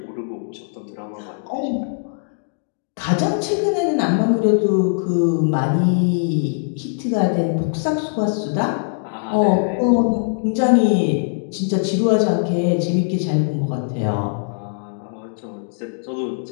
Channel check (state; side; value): silent; right; digital silence